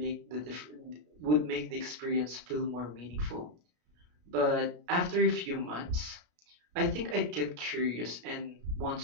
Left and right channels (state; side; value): late; left; 33 ms